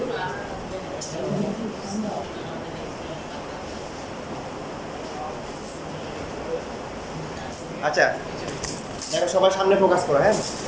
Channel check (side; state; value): both; identical; correlation 1.00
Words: আমরা আচ্ছা দেখো সবাই সামনে ফোকাস করো, হ্যাঁ।